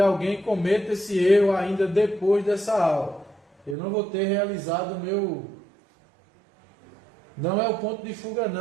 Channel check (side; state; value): left; drops out; at 3.8 s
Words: cometa esse erro ainda depois dessa aula. Eu não vou ter realizado o meu... Não é o ponto de fuga